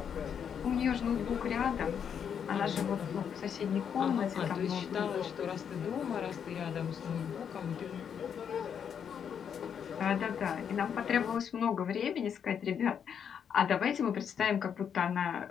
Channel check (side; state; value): right; quieter; 7.8 dB